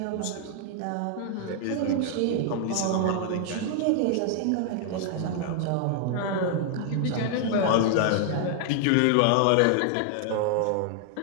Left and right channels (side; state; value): both; different; correlation 0.00